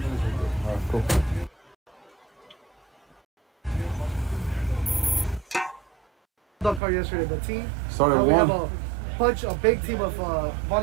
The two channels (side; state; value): left; drops out; at 6.8 s